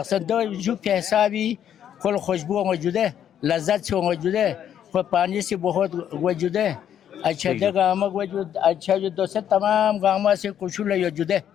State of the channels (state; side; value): quieter; right; 9.8 dB